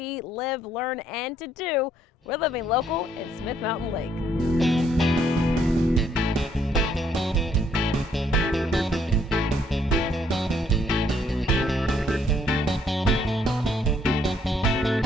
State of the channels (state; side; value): normal; both; correlation 0.68